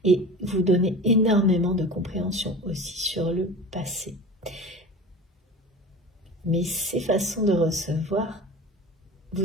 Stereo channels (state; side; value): normal; both; correlation 0.35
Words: et vous donner énormément de compréhension aussi sur le passé. Mais ces façons de recevoir